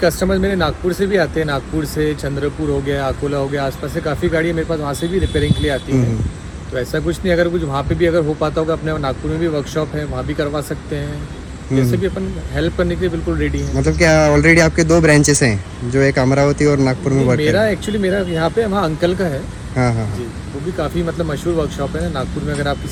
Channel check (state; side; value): identical; both; correlation 1.00